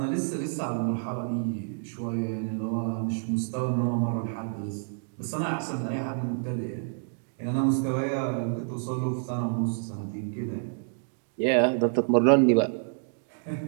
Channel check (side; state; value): left; silent; digital silence